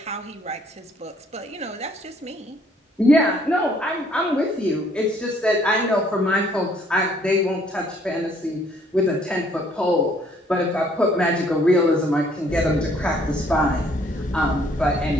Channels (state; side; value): normal; both; correlation 0.63